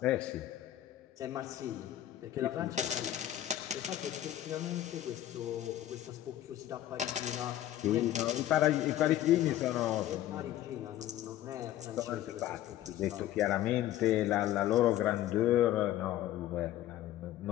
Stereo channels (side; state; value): right; quieter; 13.0 dB